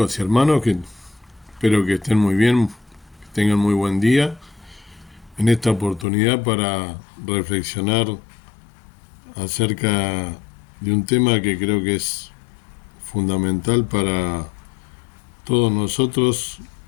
y hermanos, que espero que estén muy bien, que tengan muy buen día en esta oportunidad para reflexionar acerca de un tema que creo que es fundamental para todos nosotros,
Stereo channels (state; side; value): drops out; right; at 6.1 s